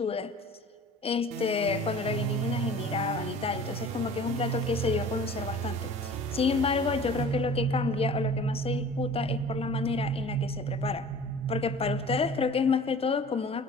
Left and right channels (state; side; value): normal; both; correlation 0.44